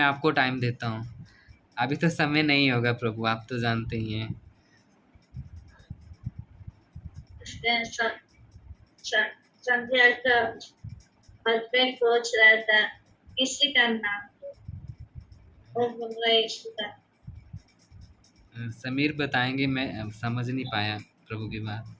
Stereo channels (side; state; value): both; identical; correlation 1.00